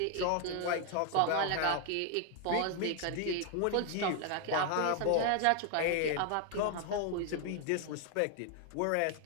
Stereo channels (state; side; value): different; both; correlation 0.01